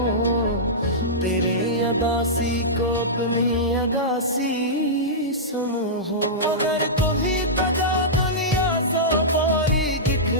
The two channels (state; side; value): normal; both; correlation -0.13